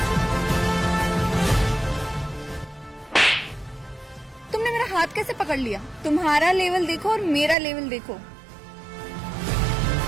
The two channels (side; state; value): left; drops out; at 7.6 s